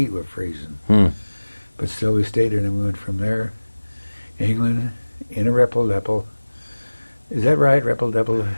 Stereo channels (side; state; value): both; inverted; correlation -1.00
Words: were freezing. But still we stayed there, and then we went from there, England, in a Repple-Depple. Is that right, Repple-Depple?